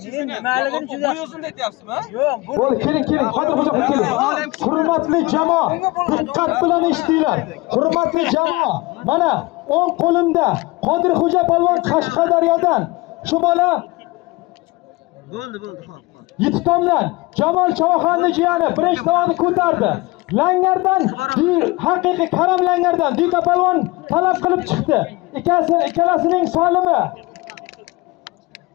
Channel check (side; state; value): right; quieter; 22.4 dB